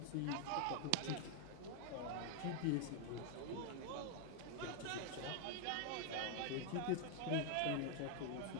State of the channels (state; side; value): different; both; correlation 0.00